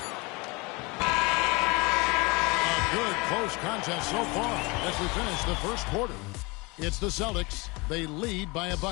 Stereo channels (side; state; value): right; quieter; 26.2 dB